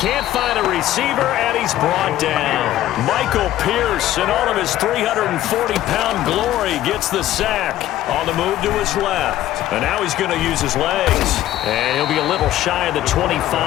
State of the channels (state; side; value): quieter; right; 13.6 dB